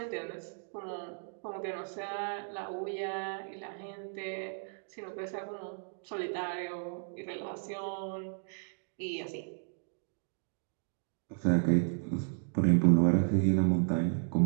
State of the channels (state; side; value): silent; left; 55 dB below the other